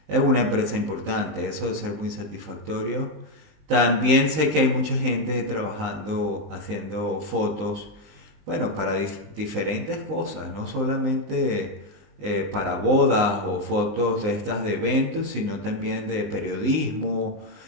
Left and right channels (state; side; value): late; left; 19 ms